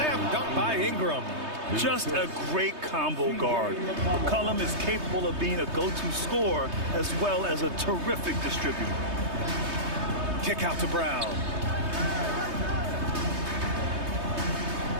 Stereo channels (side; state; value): left; late; 3.2 ms